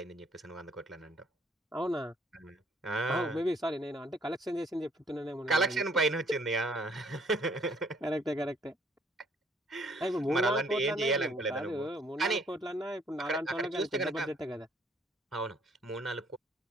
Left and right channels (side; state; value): both; normal; correlation 0.63